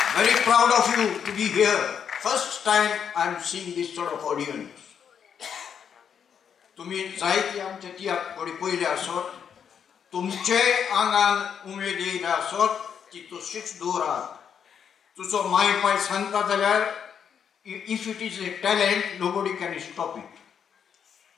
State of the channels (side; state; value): right; quieter; 7.7 dB